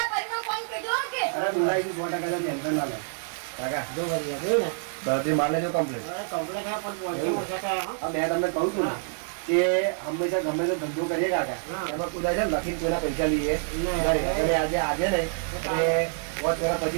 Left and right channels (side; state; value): left; silent; digital silence